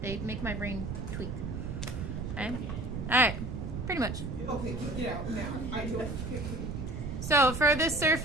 They make my brain tweak. Okay? Alright, pretty much. Okay, get out now. I do it. So for the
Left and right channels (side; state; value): right; noise; rumble, 5 dB below the sound